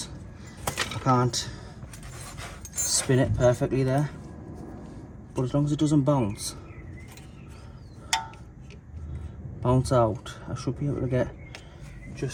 I can't spin it perfectly there, but as long as it doesn't bounce out, I should be able to get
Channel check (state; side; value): identical; both; correlation 1.00